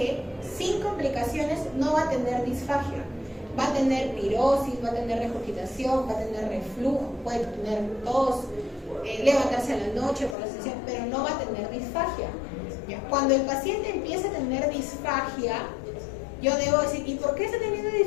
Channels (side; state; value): right; drops out; at 10.4 s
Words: sin complicaciones no va a tener disfagia. Va a tener pirosis, va a tener regurgitación, va a tener reflujo, puede tener tos, levantarse a la noche por la sesión, pero no va a tener disfagia. ¿Ya? Cuando el paciente empieza a tener disfagia, yo debo decir, ¿y por qué está teniendo